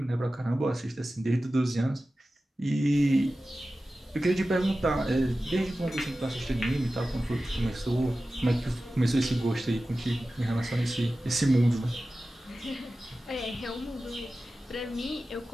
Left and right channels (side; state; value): both; normal; correlation 0.95